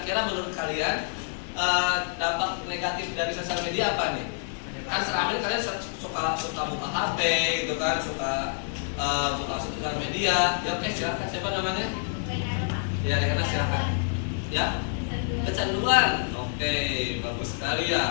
menurut kalian dampak negatif dari sosial media apa nih? Kan selama ini kalian suka buka HP gitu kan, suka buka sosial media. Ya oke, silakan. Siapa namanya? Ya, Rekana silakan. Ya, kecanduan. Oke, bagus sekali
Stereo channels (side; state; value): right; silent; 60 dB below the other